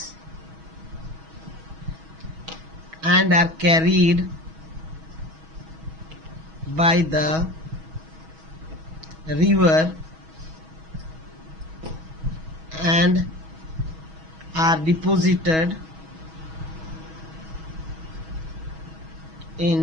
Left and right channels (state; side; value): late; left; 6.2 ms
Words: and are carried by the river and are deposited